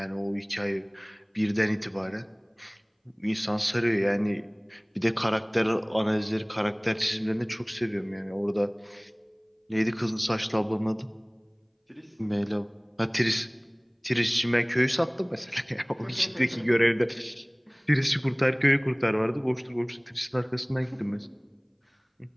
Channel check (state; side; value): identical; both; correlation 1.00